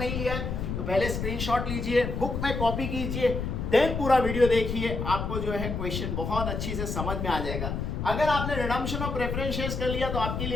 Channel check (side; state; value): left; noise; rumble, 3 dB below the sound